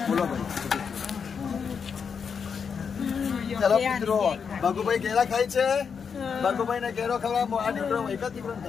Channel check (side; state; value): right; quieter; 6.3 dB